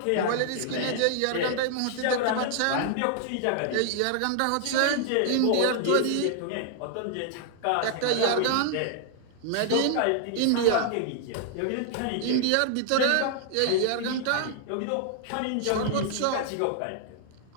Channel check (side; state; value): both; different; correlation 0.00